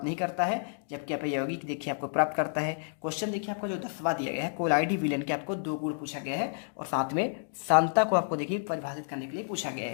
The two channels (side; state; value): right; silent; digital silence